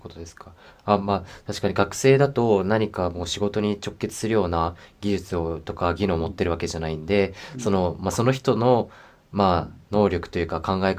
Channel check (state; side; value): identical; both; correlation 1.00